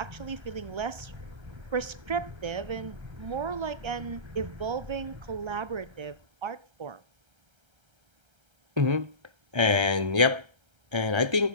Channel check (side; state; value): left; late; 1.3 ms